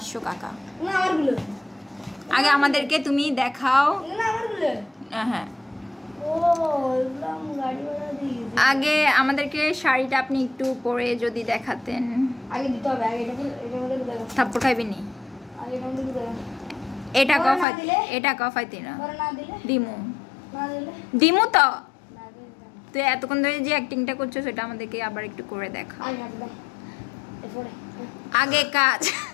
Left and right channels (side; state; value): right; drops out; at 17.7 s